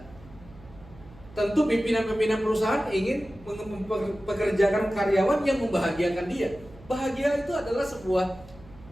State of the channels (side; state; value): right; noise; hum, 21 dB below the sound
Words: Tentu pimpinan-pimpinan perusahaan ingin mempekerjakan karyawan yang membahagiakan dia. Bahagia itu adalah sebuah